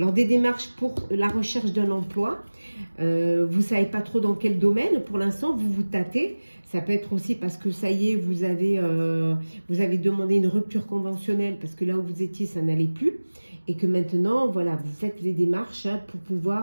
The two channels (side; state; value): both; inverted; correlation -1.00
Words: des démarches pour la recherche d'un emploi. Vous ne savez pas trop dans quel domaine. Pour l'instant, vous vous tâtez. Ça peut être aussi parce que ça y est, vous avez demandé une rupture conventionnelle parce que là où vous étiez, ça n'allait plus. Et que maintenant, voilà, vous faites les démarches hein, pour